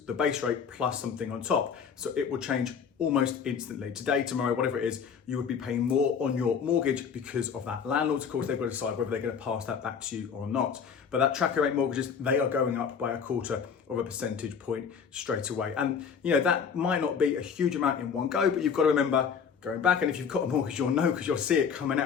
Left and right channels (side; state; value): right; quieter; 6.7 dB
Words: the base rate plus something on top. So it will change almost instantly. Today, tomorrow, whatever it is, you would be paying more on your mortgage because of that. Landlords, of course, they've got to decide whether they're going to pass that back to you or not. But that tracker rate mortgages, they are going up by 1/4 of a percentage point straight away. And that might not be a huge amount in one go, but you've got to remember going back, and if you've got a mortgage, you'll know because you'll see it coming